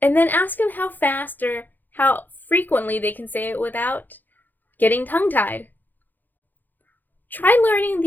And then ask them how fast or how frequently they can say it without getting tongue-tied. Try learning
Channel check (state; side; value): late; right; 0.087 ms